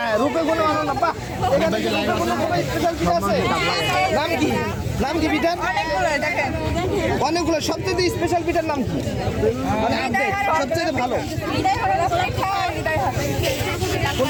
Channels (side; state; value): both; identical; correlation 1.00